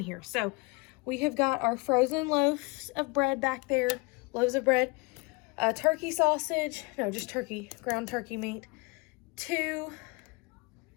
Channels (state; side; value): quieter; right; 27.0 dB